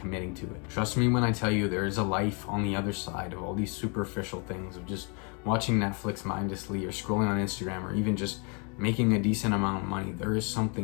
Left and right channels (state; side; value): quieter; right; 34.8 dB